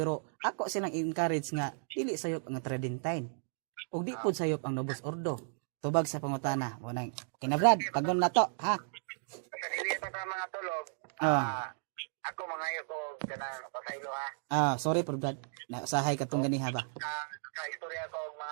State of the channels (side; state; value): left; silent; digital silence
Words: ako silang encourage nga dili sayop ang Tridentine. Ug di pud sayop ang Novus Ordo. Tubag sa pangutana. Mo nang kinabrad paggon na to ha. Sa dili pa sa mga tulog. Ako mangayo ko kanang pasaylo ha. Sorry por Brad. Nasahay katong ganiha ba. Istorya ko